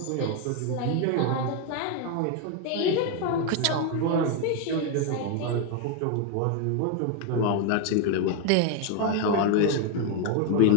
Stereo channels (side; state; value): both; different; correlation 0.01